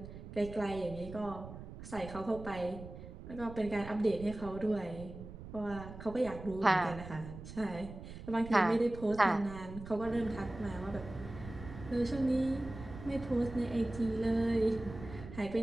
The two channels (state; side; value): noise; right; rumble, 12 dB below the sound